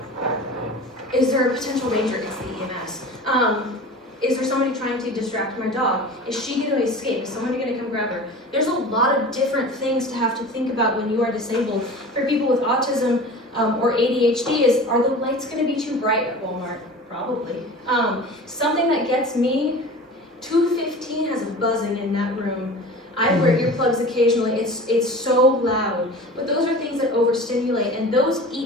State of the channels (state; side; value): normal; both; correlation 0.37